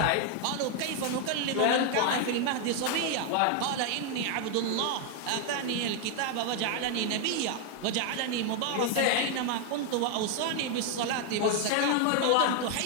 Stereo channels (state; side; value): different; both; correlation 0.00